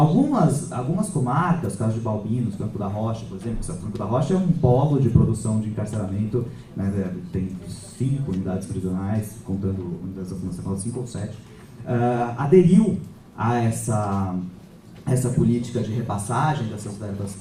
comarcas, caso de Balbinos, Franco da Rocha, por exemplo, Franco da Rocha é um polo de produção de encarceramento, né, tem 5 unidades prisionais, contando unidades da Fundação, 5 ou 7, aderiu a essa política de repassagem dessas verbas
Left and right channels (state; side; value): identical; both; correlation 1.00